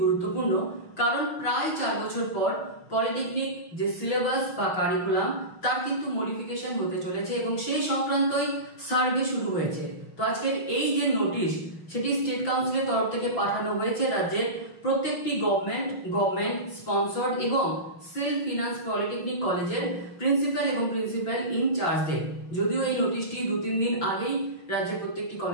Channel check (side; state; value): right; late; 5.9 ms